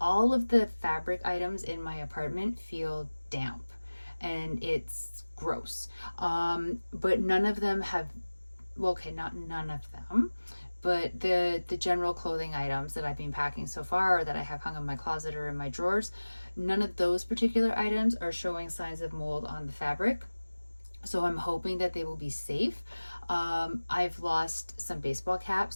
of the fabric items in my apartment feel damp and it's gross. But none of them have, well, okay, not none of them, but the general clothing items that I've been packing so far, or that I have hung in my closet or in my drawers, none of those particular items are showing signs of mold on the fabric. So I'm hoping that they will be safe. I've lost some baseball caps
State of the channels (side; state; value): both; inverted; correlation -1.00